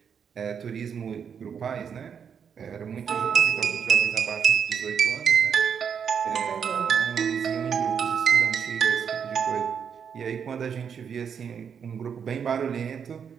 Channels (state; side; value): quieter; left; 7.2 dB